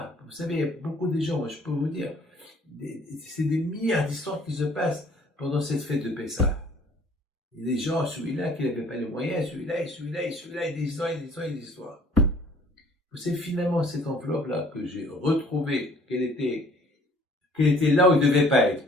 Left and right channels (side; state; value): both; normal; correlation 0.56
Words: Vous savez, il y a beaucoup de gens, moi je peux vous dire, c'est des milliards d'histoires qui se passent pendant cette fête de Pessah. Il y a des gens, celui-là qui n'avait pas les moyens, celui-là, et des histoires. Vous savez, finalement, cette enveloppe-là que j'ai retrouvée, qu'elle était là où il ne devait pas être.